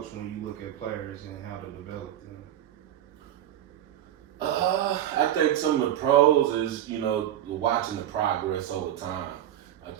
when you look at players and how to develop them? I think some of the pros is, you know, watching the progress over time. I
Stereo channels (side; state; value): left; quieter; 11.6 dB